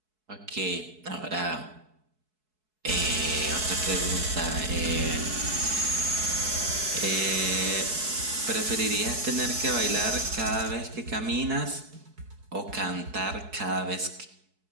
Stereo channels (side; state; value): left; late; 4.7 ms